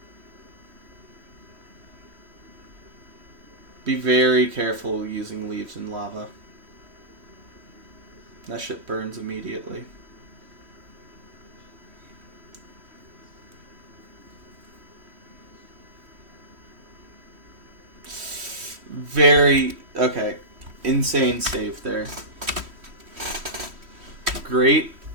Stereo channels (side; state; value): left; late; 3.1 ms